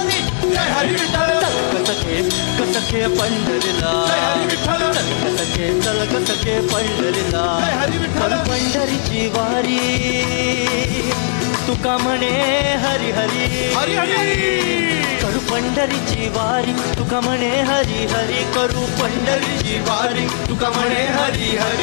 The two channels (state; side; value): silent; right; digital silence